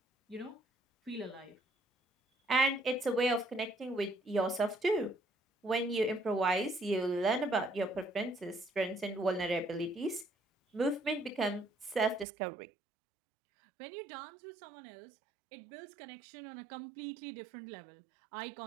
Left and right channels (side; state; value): left; drops out; at 12.2 s